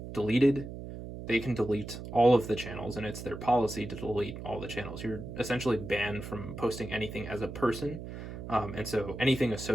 deleted, they can delete all of the channels, and it's their policy to delete all the channels. You're essentially banned from posting anything as a person. And so anything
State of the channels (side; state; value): right; noise; hum, 10 dB below the sound